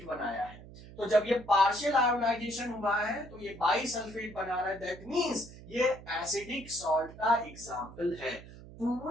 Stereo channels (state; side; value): noise; right; hum, 17 dB below the sound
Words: बनाया है। तो जब ये पार्शियल आयोनाइजेशन हुआ है तो ये बाइसल्फेट बना रहा है, दैट मींस ये एसिडिक सॉल्ट का एग्जांपल है।